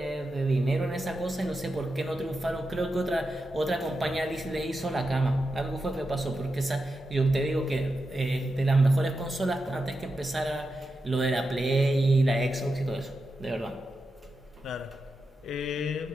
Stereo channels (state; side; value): normal; both; correlation 0.89